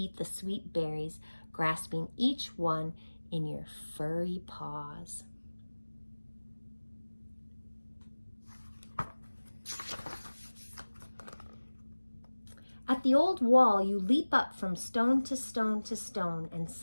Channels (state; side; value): inverted; both; correlation -1.00